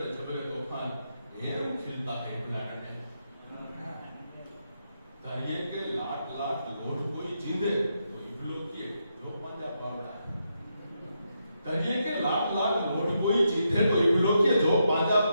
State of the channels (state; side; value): inverted; both; correlation -0.82